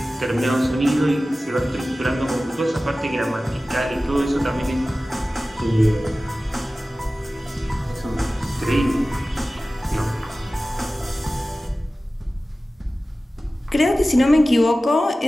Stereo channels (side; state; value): both; normal; correlation 0.96